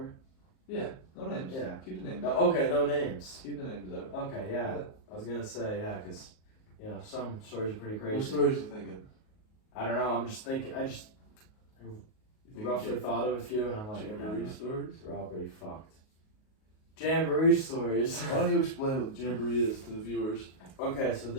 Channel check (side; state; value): right; late; 38 ms